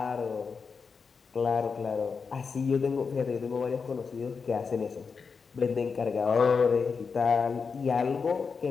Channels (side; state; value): right; quieter; 5.3 dB